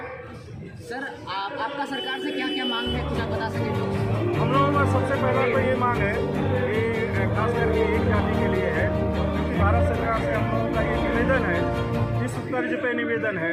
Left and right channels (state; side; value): identical; both; correlation 1.00